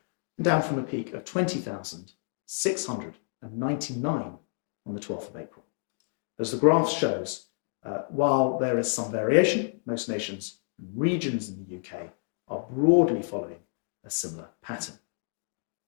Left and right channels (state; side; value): silent; right; digital silence